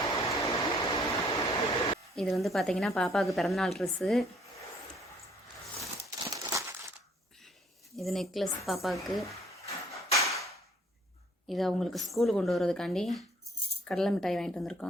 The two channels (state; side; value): normal; both; correlation 0.60